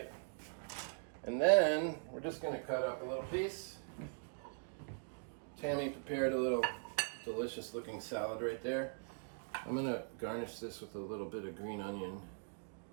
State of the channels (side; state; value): left; silent; digital silence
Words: and then we're just going to cut up a little piece. Tammy prepared a little delicious looking salad right there. I'm going to garnish this with a little bit of green onion,